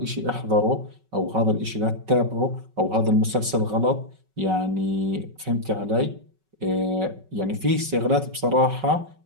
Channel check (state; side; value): late; left; 5.3 ms